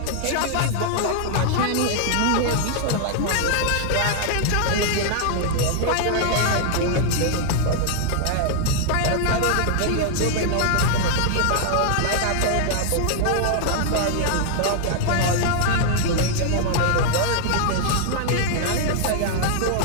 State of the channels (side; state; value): both; different; correlation 0.00